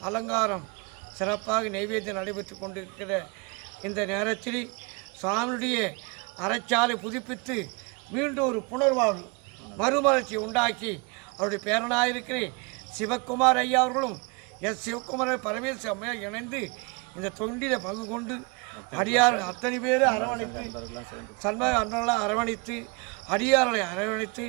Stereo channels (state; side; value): quieter; left; 30.4 dB